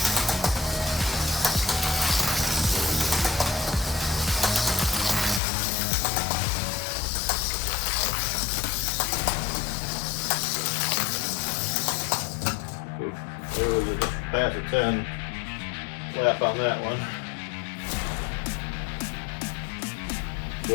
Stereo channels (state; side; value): drops out; right; at 5.4 s